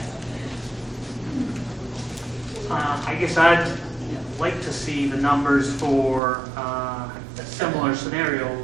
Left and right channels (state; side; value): drops out; left; at 6.2 s